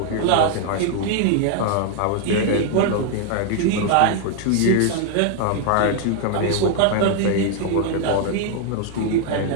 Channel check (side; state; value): both; different; correlation 0.00